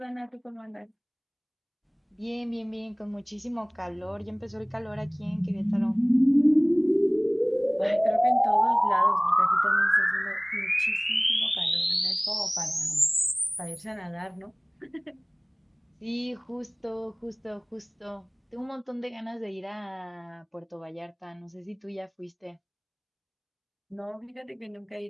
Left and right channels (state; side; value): identical; both; correlation 1.00